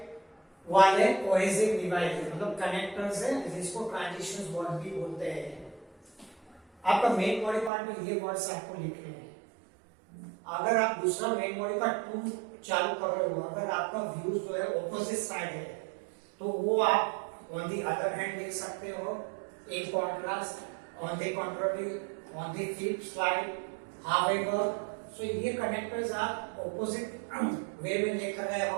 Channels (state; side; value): drops out; left; at 7.7 s